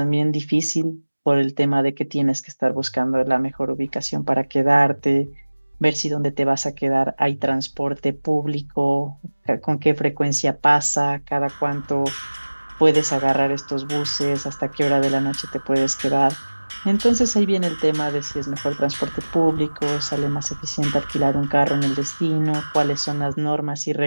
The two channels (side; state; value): both; inverted; correlation -1.00